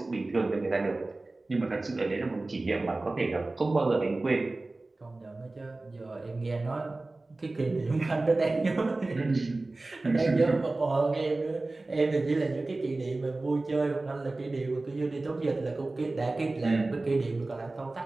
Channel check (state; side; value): quieter; left; 3.1 dB